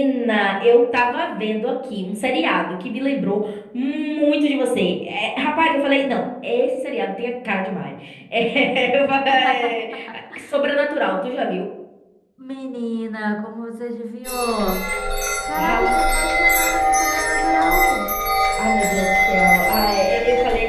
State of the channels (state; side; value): identical; both; correlation 1.00